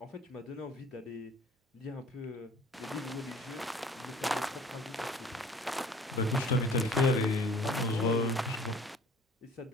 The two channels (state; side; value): normal; both; correlation 0.52